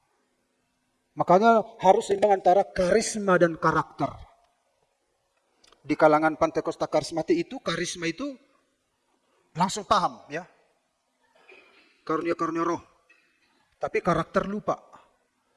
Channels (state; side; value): identical; both; correlation 1.00